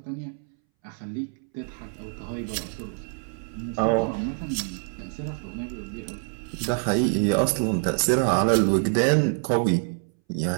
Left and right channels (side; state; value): left; silent; 61 dB below the other